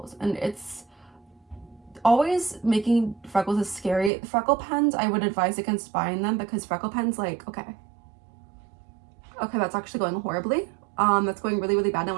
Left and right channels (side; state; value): left; drops out; at 4.1 s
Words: And it's always making freckles is scary. Freckle pens, I would advise against buying them because freckle pens, like, okay, that's actually going horribly. That's going really, really bad. I